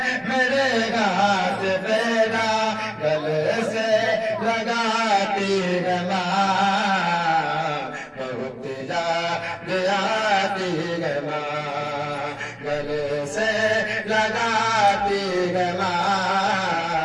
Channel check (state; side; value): identical; both; correlation 1.00